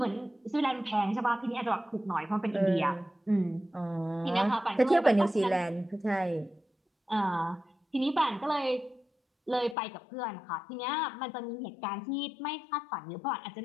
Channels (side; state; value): right; drops out; at 9.8 s